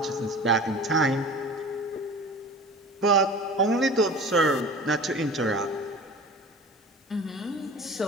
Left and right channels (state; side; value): normal; both; correlation 0.38